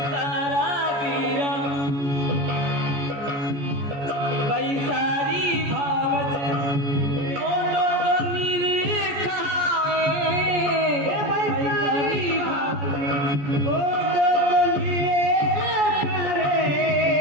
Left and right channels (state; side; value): late; left; 14 ms